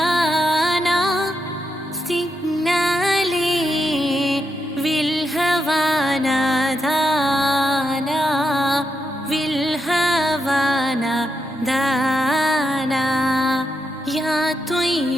सिग्नाले विल्हवाना दाना विल्हवाना दाना. या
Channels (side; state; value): both; normal; correlation 0.83